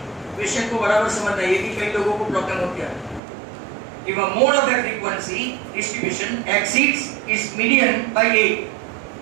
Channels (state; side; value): drops out; left; at 3.2 s